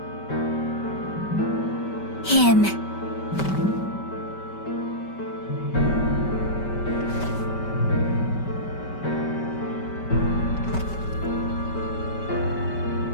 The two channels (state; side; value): late; right; 5.2 ms